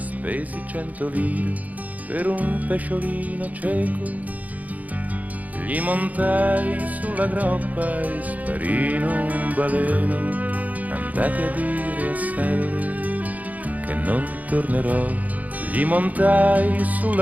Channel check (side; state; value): left; late; 0.076 ms